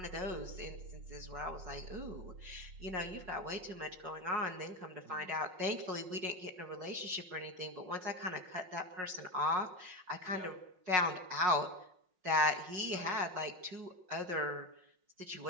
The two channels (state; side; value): late; left; 5.5 ms